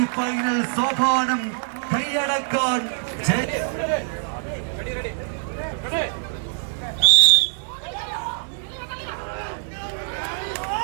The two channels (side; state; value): left; silent; 57 dB below the other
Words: ഫൈനൽ സോപാനം കൈയടക്കാൻ